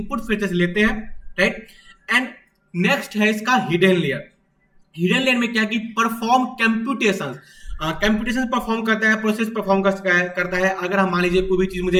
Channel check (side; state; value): both; identical; correlation 1.00